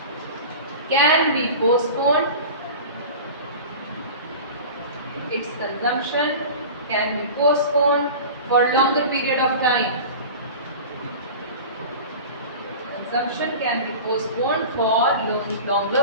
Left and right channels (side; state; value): both; inverted; correlation -0.35